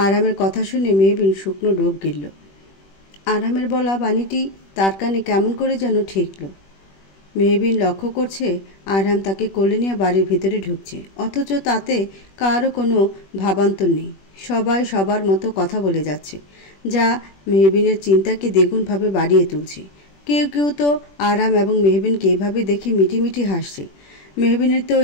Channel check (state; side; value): late; right; 21 ms